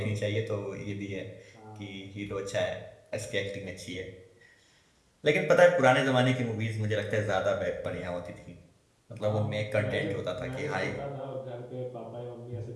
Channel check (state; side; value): identical; both; correlation 1.00